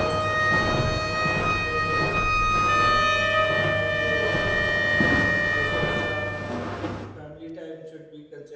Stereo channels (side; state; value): both; identical; correlation 1.00